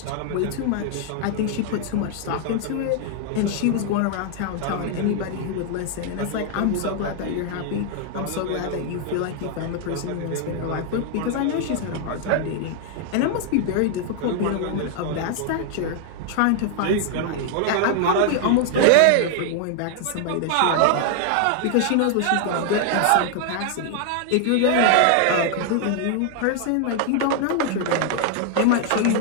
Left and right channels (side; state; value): both; different; correlation 0.00